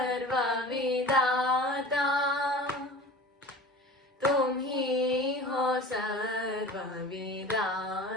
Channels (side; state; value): both; normal; correlation 0.38